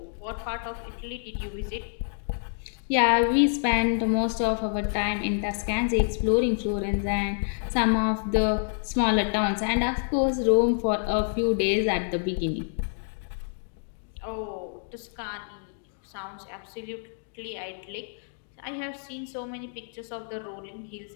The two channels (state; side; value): silent; right; digital silence